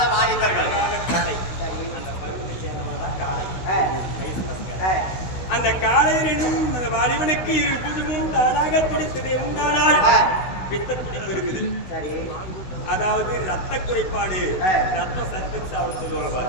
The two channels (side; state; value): right; late; 16 ms